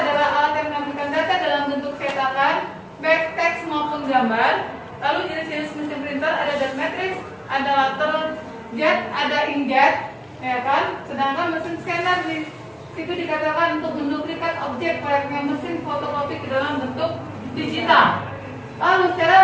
alat yang menampilkan data dalam bentuk cetakan, baik teks maupun gambar. Lalu jenis-jenis mesin printer ada dot matrix, ada lateral jet, ada inkjet, ya kan? Sedangkan mesin scanner itu dikatakan untuk menduplikat objek layaknya mesin fotokopi ke dalam bentuk digital. Lalu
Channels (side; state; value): both; identical; correlation 1.00